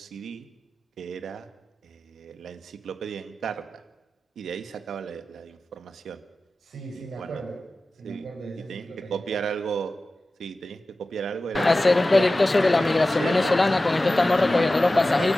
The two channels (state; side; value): normal; both; correlation 0.95